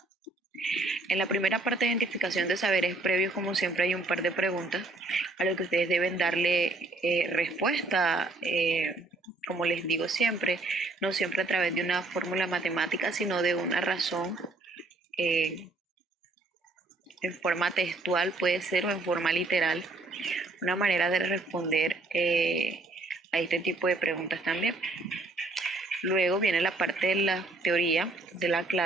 En la primera parte de identificación de saberes previos, como siempre, hay un par de preguntas a lo que ustedes deben darle respuesta. Como les digo siempre, no siempre a través de una fórmula matemática, sino de una razón en forma textual, puede ser, o en forma literal, una manera de responder a este tipo de preguntas también. Luego viene la parte de la teoría de la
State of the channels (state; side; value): quieter; left; 3.2 dB